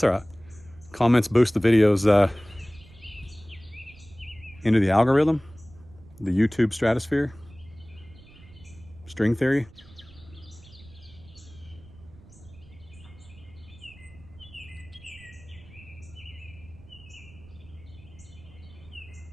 all right. Comments boost the videos into the algorithm, the YouTube stratosphere. String theory.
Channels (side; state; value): right; noise; rumble, 22 dB below the sound